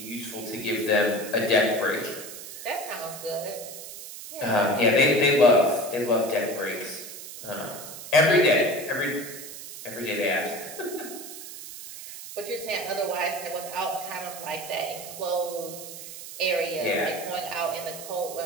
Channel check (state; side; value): noise; right; hiss, 12 dB below the sound